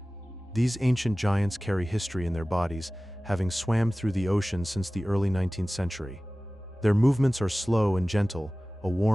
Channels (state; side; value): normal; both; correlation 0.97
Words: These ancient giants carry history in their bodies, having swam through the ocean since the early 19th century. Their movements are slow and gentle, a